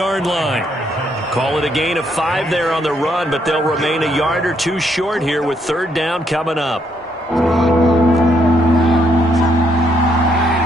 line. Call it a gain of 5 there on the run, but they'll remain a yard or 2 short here with 3rd down coming up.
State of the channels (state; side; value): normal; both; correlation 0.73